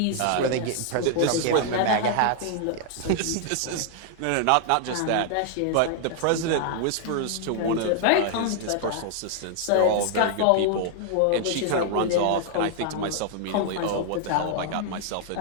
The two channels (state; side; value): different; both; correlation 0.00